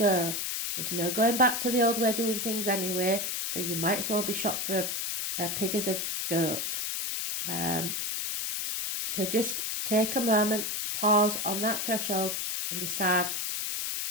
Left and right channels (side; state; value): left; noise; hiss, 2 dB below the sound